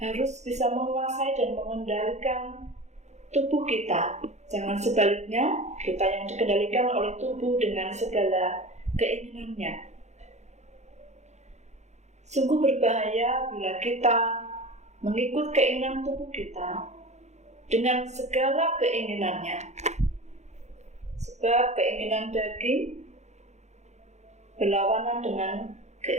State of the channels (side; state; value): left; late; 0.33 ms